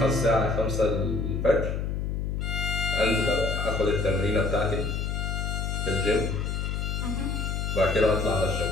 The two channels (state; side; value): noise; left; hum, 1 dB below the sound